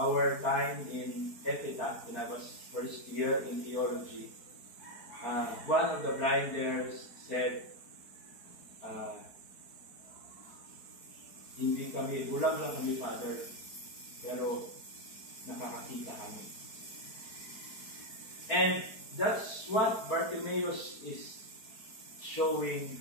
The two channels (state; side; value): late; right; 4.6 ms